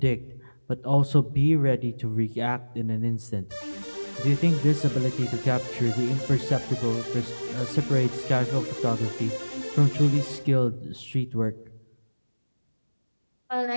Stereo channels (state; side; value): inverted; both; correlation -1.00